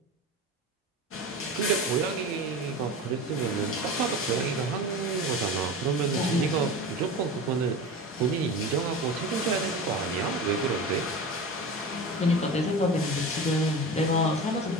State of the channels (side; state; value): both; normal; correlation 0.30